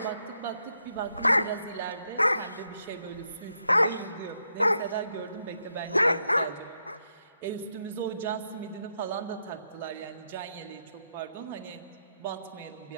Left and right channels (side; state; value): both; inverted; correlation -0.80